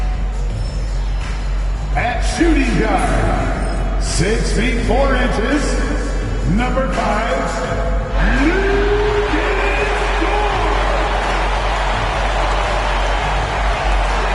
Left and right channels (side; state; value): both; identical; correlation 1.00